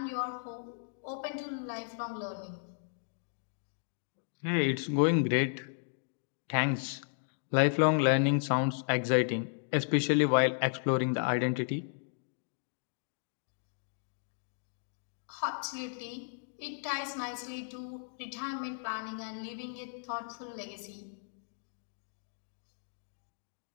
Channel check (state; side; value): silent; right; digital silence